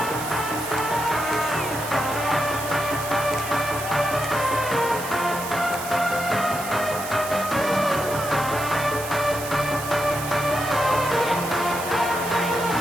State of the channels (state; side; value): noise; right; hiss, 10 dB below the sound